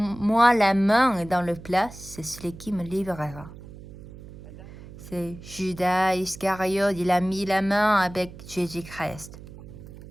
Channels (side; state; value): right; noise; hum, 16 dB below the sound